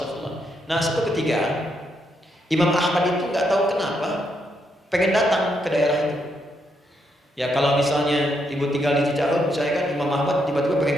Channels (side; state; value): both; normal; correlation 0.78